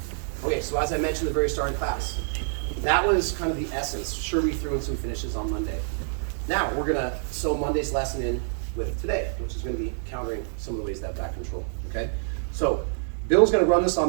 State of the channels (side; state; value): left; silent; digital silence